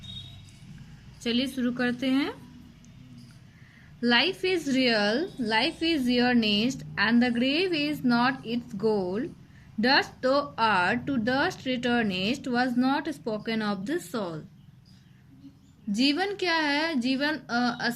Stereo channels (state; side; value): identical; both; correlation 1.00